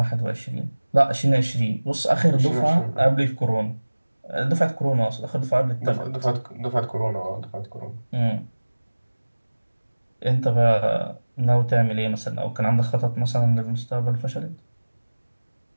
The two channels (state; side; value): inverted; both; correlation -1.00